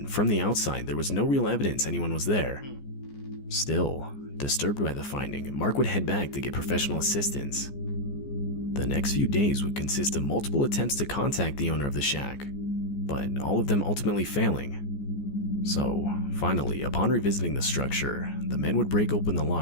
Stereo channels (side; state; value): right; late; 14 ms